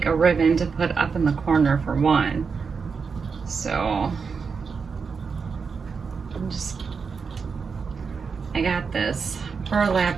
a ribbon to put up in the corner for one. So I got this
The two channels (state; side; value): quieter; left; 5.4 dB